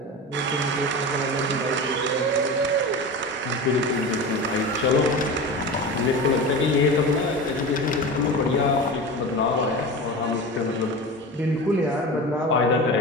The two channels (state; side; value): normal; both; correlation 0.28